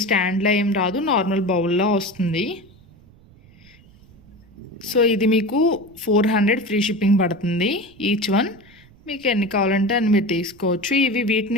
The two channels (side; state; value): right; noise; rumble, 26 dB below the sound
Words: స్టాండ్లో ఏం రాదు, నార్మల్ బౌల్లో వస్తుంది. సో ఇది మీకు 400 ఫ్రీ షిప్పింగ్ పడుతుంది ఈచ్ వన్. మీకు ఎన్ని కావాలంటే అన్ని మీరు తీసుకోవచ్చు.